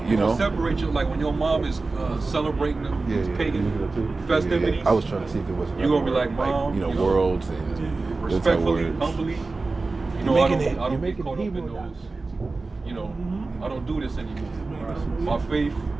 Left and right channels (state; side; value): quieter; left; 3.6 dB